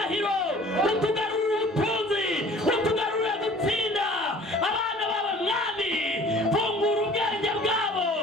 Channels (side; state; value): both; normal; correlation 0.49